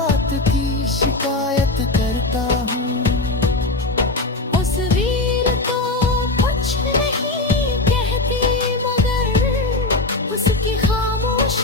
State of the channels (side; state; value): right; quieter; 3.0 dB